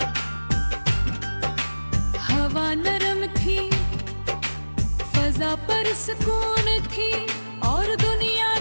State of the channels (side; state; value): both; inverted; correlation -1.00